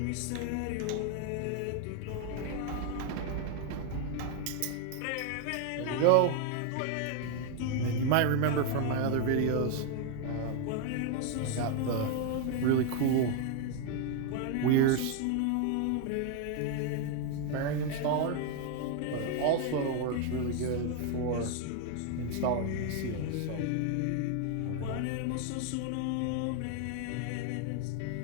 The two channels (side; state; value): both; different; correlation 0.01